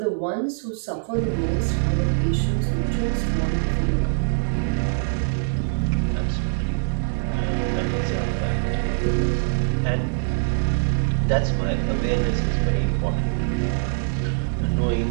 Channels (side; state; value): left; silent; digital silence